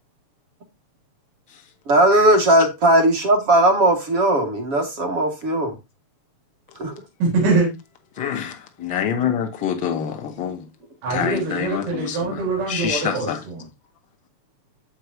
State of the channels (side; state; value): left; late; 7.2 ms